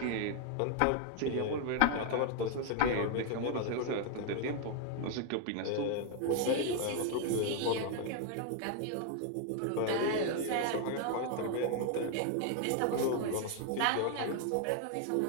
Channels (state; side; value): different; both; correlation 0.00